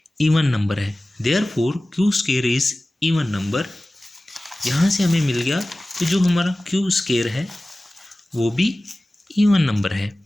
इवन नंबर है, therefore Q square is even number. यहाँ से हमें मिल गया कि जो हमारा क्यू स्केयर है वो भी इवन नंबर है।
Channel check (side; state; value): both; normal; correlation 0.97